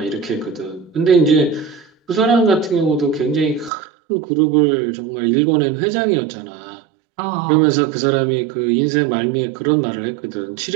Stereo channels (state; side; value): drops out; left; at 3.7 s